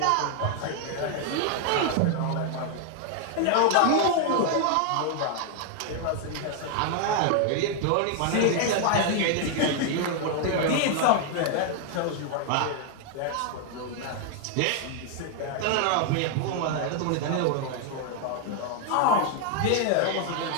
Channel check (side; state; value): both; different; correlation 0.00